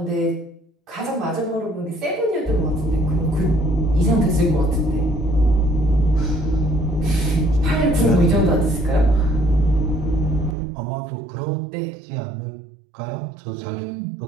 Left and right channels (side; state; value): left; drops out; at 10.6 s